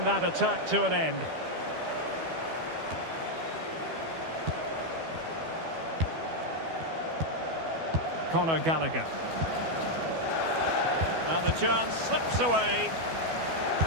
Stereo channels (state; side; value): late; left; 12 ms